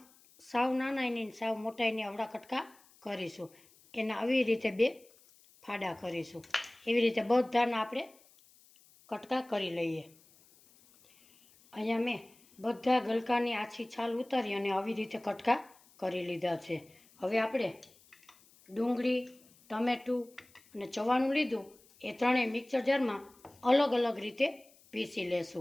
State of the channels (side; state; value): left; noise; hiss, 28 dB below the sound